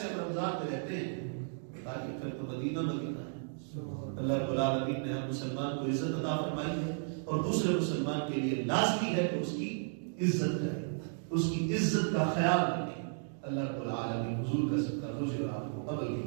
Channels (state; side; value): silent; left; digital silence